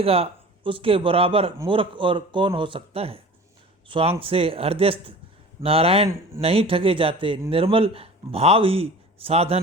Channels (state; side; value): normal; both; correlation 0.40